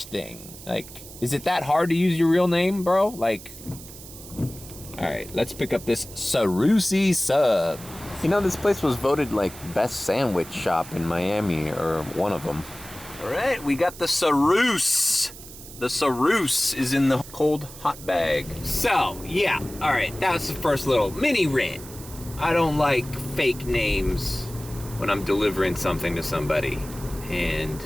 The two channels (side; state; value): right; noise; hiss, 16 dB below the sound